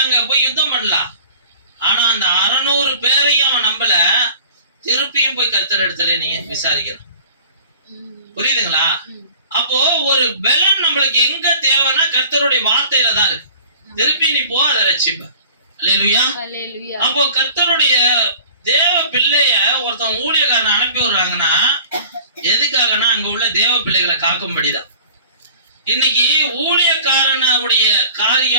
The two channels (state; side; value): inverted; both; correlation -0.45